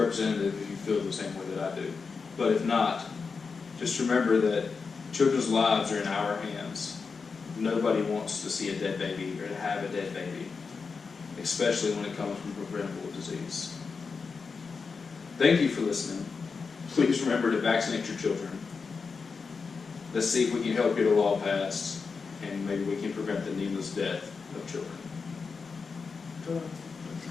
representative if you feel the same way that I do. But if not, just remember that children's lives are in our hands. Nobody wants to see a dead baby or to have a dead baby, especially when it comes from preventable disease. Thank you for listening. Please remember to vaccinate your children. Let's see if we can help get a law passed, and maybe we can prevent the needless death of children.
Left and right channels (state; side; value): quieter; right; 5.0 dB